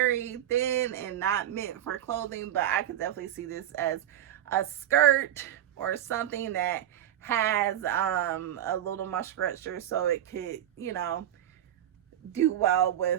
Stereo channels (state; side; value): quieter; left; 11.4 dB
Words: thin and not meant for clothing, but I could definitely see this as a skirt or something that has a little more structure, so it could, you know, do well